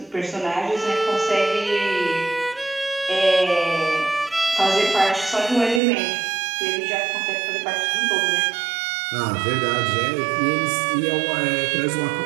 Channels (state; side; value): drops out; left; at 5.8 s